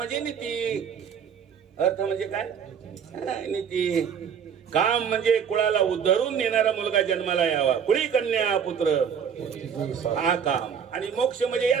नीती. अर्थ म्हणजे काय? नीती. काम म्हणजे कुळाला उद्धरून नेणारा मुलगा जन्माला यावा, कुळी कन्या पुत्र हा काम. आणि मोक्ष म्हणजे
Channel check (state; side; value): quieter; left; 7.4 dB